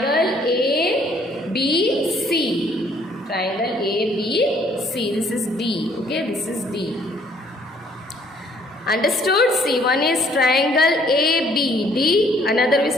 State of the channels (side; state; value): both; normal; correlation 0.62